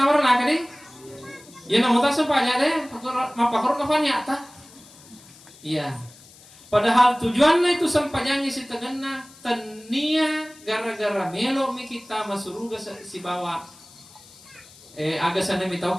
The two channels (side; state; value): left; noise; hiss, 23 dB below the sound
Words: amar nak deh. Ya nama tu masam pajak deh. Mapakor kapan ya ta? Iya. Padahal tujuannya itu sampajangnya si tegena tania gara-gara melo mi kita masuk surga si bawa. Aga sana mitau